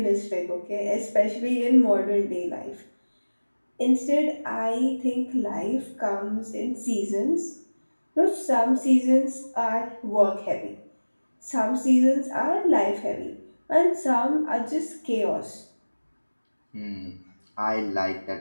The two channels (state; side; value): inverted; both; correlation -1.00